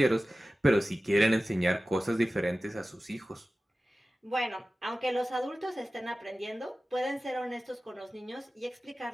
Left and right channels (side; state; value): both; normal; correlation 0.96